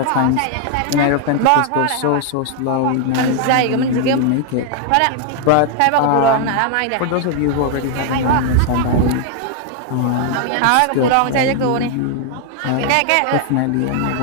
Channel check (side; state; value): both; different; correlation 0.00